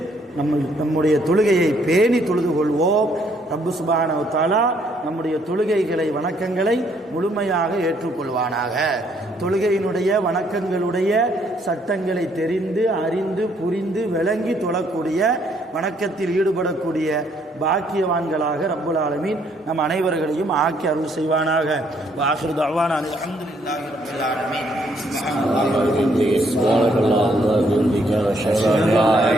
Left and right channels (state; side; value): normal; both; correlation 0.68